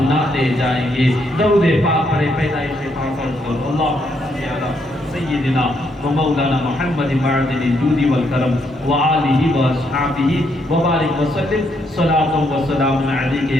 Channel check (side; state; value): both; normal; correlation 0.75